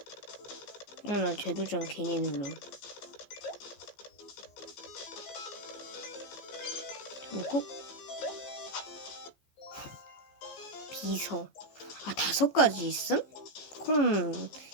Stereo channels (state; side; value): late; right; 15 ms